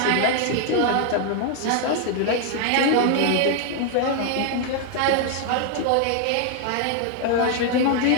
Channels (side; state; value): both; different; correlation 0.00